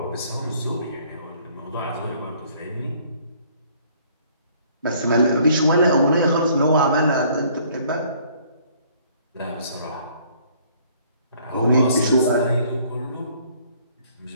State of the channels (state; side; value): inverted; both; correlation -0.60